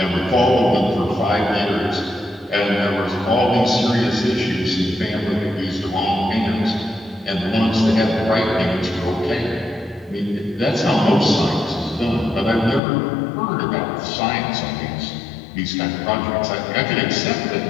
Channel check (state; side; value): drops out; right; at 12.8 s